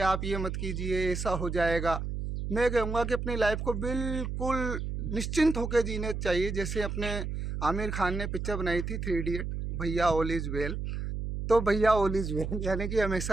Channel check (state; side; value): noise; right; hum, 4 dB below the sound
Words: आप ये मत कीजिए, ऐसा हो जाएगा। मैं कहूँगा कि अपनी लाइफ को बिल्कुल निश्चिंत होकर जीने चाहिए। जैसे अपने आमिर खान ने पिक्चर बनाई थी 3 इडियट, भैया ऑल इज वेल। तो भैया ऑल इज वेल यानी कि